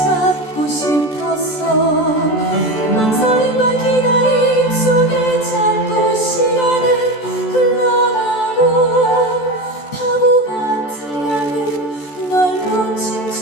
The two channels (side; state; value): right; late; 14 ms